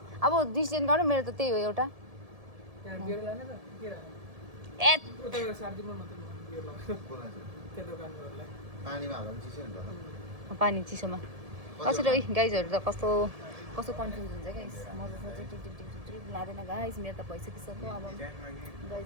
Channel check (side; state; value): left; late; 1.7 ms